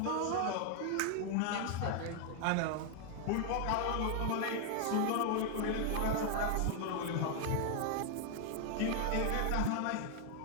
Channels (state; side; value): different; both; correlation 0.00